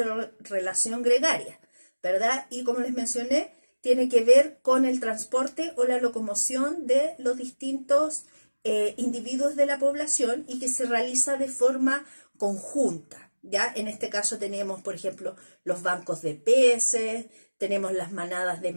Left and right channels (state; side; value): inverted; both; correlation -1.00